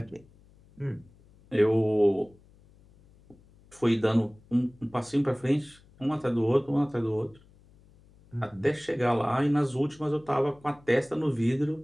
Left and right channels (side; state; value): left; noise; hum, 28 dB below the sound